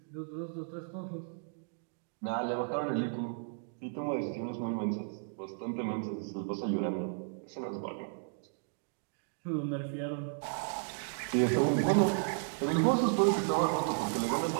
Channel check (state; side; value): silent; left; digital silence